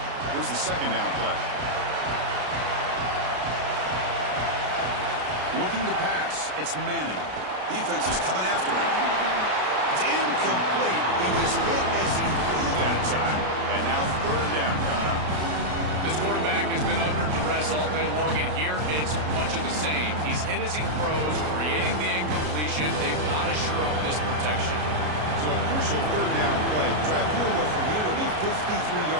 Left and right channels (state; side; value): late; left; 33 ms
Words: Here's the 2nd down play. Looking to pass. It's Manning. Defense is coming after him. It's incomplete. He was hit as he threw that time. And now 3rd down coming up. This quarterback has been under duress all day long, and here it's much of the same. He's hit as he throws, creating the incompletion. They've got to shore up this protection. So a crucial 3rd down play. To try a field goal from here would be 53